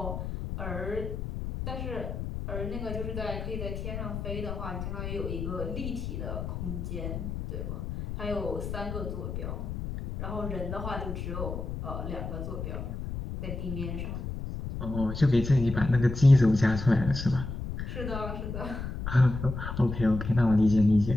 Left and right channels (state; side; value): noise; left; rumble, 5 dB below the sound